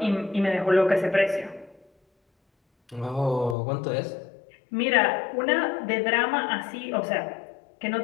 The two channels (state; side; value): drops out; right; at 3.6 s